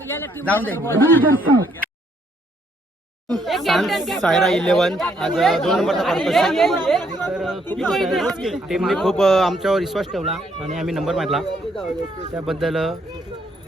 जाऊन दे. सायरा 11 आज 2 नंबरचा पर्पज. टीमने खूप आमच्यावर विश्वास ठेवला आणि आम्ही नंबर मारला, त्याबद्दल 2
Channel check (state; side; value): normal; both; correlation 0.70